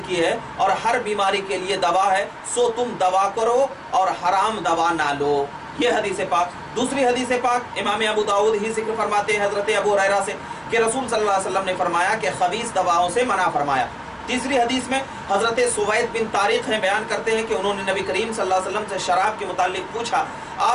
की है और हर बीमारी के लिए दवा है, सो तुम दवा करो और हराम दवा ना लो। ये हदीस पाक। दूसरी हदीस पाक इमाम अबू दाऊद ही जिक्र फरमाते हैं हज़रत अबू हुरैरा से कि रसूल सल्लल्लाहु अलैहि वसल्लम ने फरमाया कि खबीस दवाओं से मना फरमाया। तीसरी हदीस में हज़रत सुवैद बिन तारिक हैं बयान करते हैं कि उन्होंने नबी करीम सल्लल्लाहु अलैहि वसल्लम से शराब के मुतालिक पूछा,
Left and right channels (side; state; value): both; identical; correlation 1.00